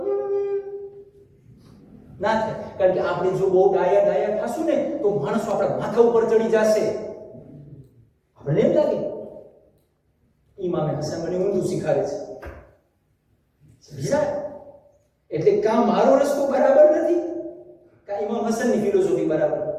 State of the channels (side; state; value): both; identical; correlation 1.00